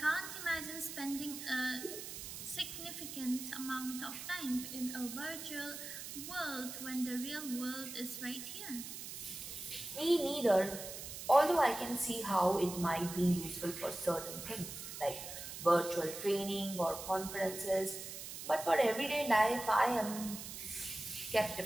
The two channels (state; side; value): noise; right; hiss, 9 dB below the sound